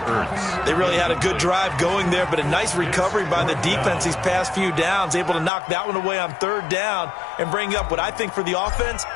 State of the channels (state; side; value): drops out; right; at 5.5 s